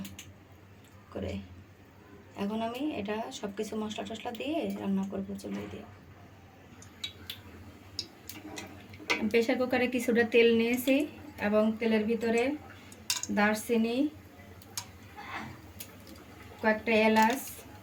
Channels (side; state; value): both; identical; correlation 1.00